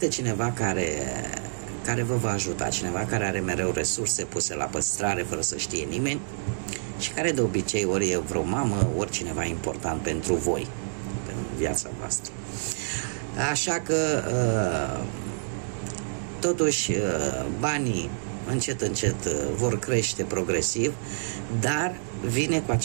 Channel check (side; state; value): left; silent; digital silence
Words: cineva care vă va ajuta, cineva care are mereu resurse puse la păstrare fără să știe nimeni și care de obicei ori e vreo mamă, ori cineva important pentru voi, pentru viața voastră. Așa că totuși banii încet, încet vor crește progresiv, dar vine cu